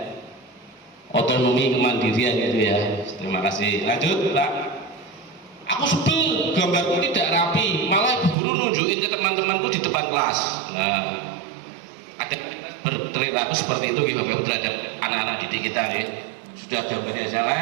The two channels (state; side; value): drops out; left; at 8.3 s